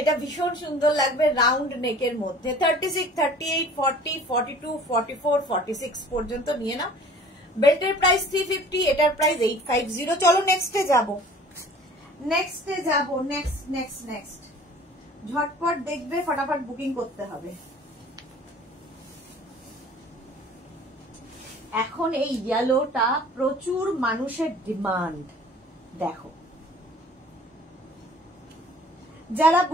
ভীষণ সুন্দর লাগবে রাউন্ড নেকের মধ্যে, 36, 38, 40, 42, 44, 46 পর্যন্ত নিয়ে নাও। বেল্টের প্রাইস 350, এটার প্রাইস 850। চলো নেক্সটে যাব, নেক্সট ঝটপট দেখবে, ফটাফট বুকিং করতে হবে। এখন এই ইয়েলোটা প্রচুর মানুষের ডিমান্ড। দেখো, যারা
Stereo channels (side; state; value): both; normal; correlation 0.48